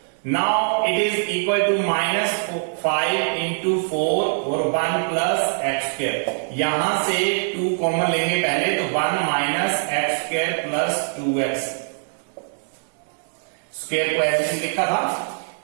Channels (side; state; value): left; silent; digital silence